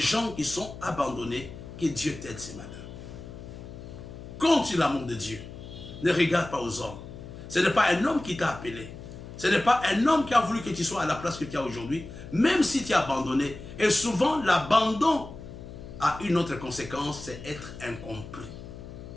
qui sont abandonnés, que Dieu t'aide ce matin. Compte sur l'amour de Dieu. Ne regarde pas aux hommes. Ce n'est pas un homme qui t'a appelé. Ce n'est pas un homme qui a voulu que tu sois à la place que tu as aujourd'hui, même si tu es abandonné. Et souvent, l'abandon a une autre conséquence, c'est être incompris.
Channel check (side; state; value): left; noise; hum, 13 dB below the sound